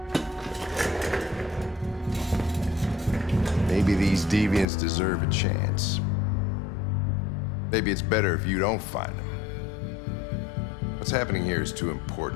Maybe these deviants deserve a chance. Maybe it's better if you don't find them. What's happening here is too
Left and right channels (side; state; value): right; drops out; at 4.7 s